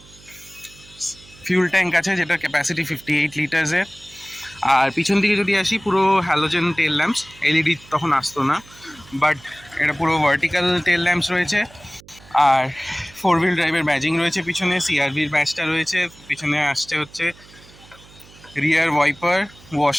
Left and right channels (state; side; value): noise; right; hum, 24 dB below the sound